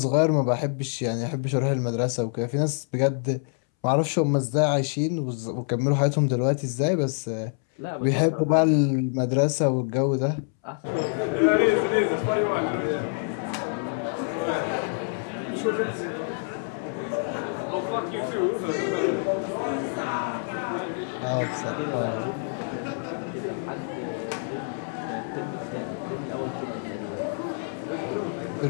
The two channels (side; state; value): right; silent; 61 dB below the other